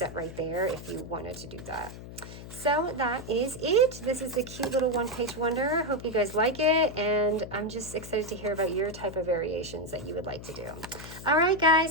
right there if you wanted to do that. So that is it. This is a cute little one-page wonder. Hope you guys like it, and I'm just excited to hear about your type of variations that you would like to do. All right,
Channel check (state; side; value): noise; left; hum, 13 dB below the sound